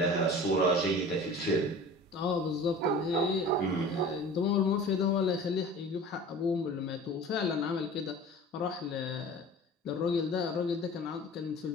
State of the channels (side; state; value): both; normal; correlation 0.40